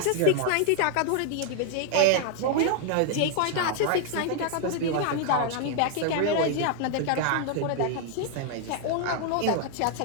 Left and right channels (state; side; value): different; both; correlation 0.00